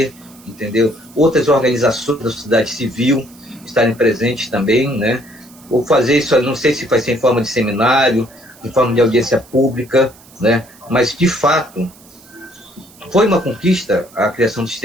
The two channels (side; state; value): right; noise; hiss, 25 dB below the sound